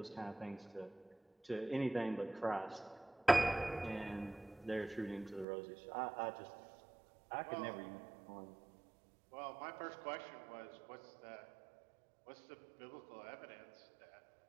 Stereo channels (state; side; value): drops out; left; at 5.5 s